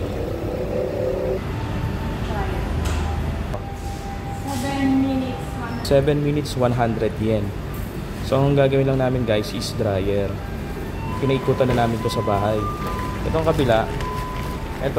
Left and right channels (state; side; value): identical; both; correlation 1.00